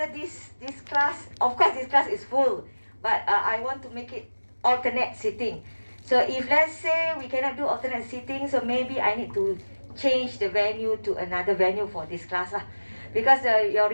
this class, of course this class is full, but I want to make it alternate sitting. So if let's say we cannot do alternate sitting, so maybe I need to change the venue to another venue for this class, because your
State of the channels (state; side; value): inverted; both; correlation -1.00